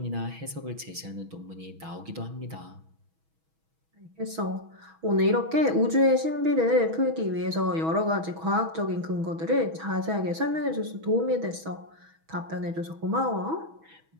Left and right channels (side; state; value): left; late; 6.2 ms